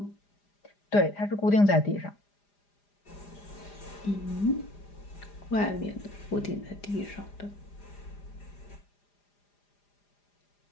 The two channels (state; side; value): late; right; 4.9 ms